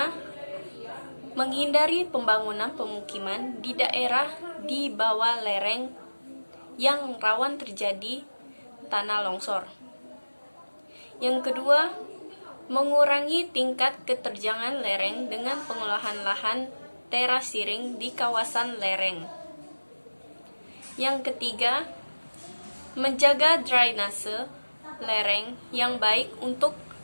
menghindari pembangunan pemukiman di daerah di bawah lereng yang rawan terjadi tanah longsor. Yang kedua, mengurangi tingkat keterjangan lereng dengan pengolahan lahan terasiring di kawasan lereng. Yang ketiga, menjaga drainase lereng yang baik untuk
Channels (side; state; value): both; inverted; correlation -1.00